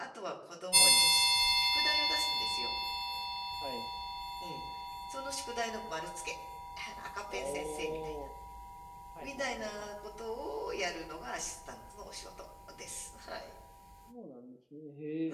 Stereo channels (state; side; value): identical; both; correlation 1.00